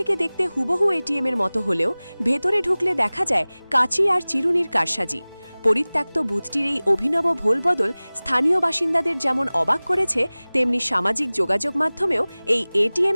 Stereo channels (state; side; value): inverted; both; correlation -0.99